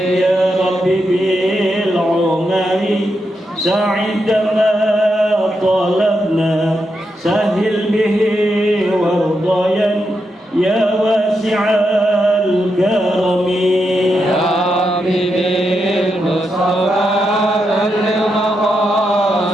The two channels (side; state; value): both; normal; correlation 0.84